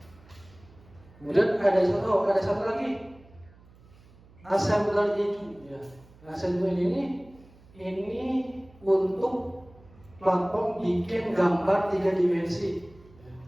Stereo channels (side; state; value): right; noise; hum, 25 dB below the sound